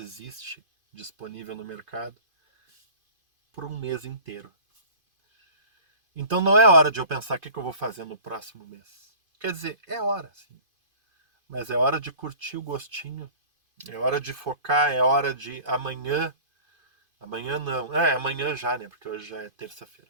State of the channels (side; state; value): left; late; 2.5 ms